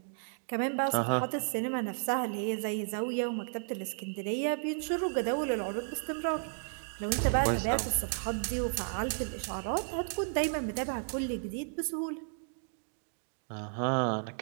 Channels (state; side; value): silent; left; digital silence